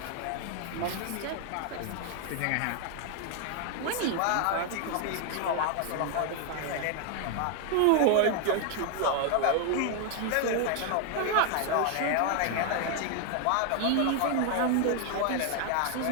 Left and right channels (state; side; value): different; both; correlation 0.00